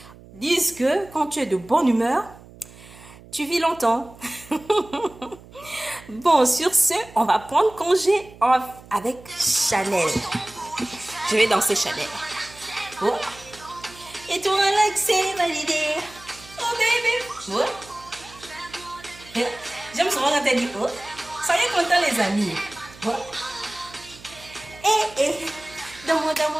disent que quand tu es de bonne humeur, tu vis longtemps. Bon, sur ce, on va prendre congé avec Chanel. Je vais danser Chanel. Oh. Et toi, Alex, c'est validé. Oh, baby. Oh. J'aime souvent quand elle dit oh. Soyez contents, les amis. Oh. Dans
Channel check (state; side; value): noise; right; hum, 21 dB below the sound